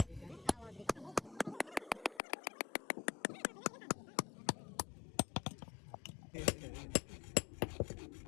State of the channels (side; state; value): right; drops out; at 2.2 s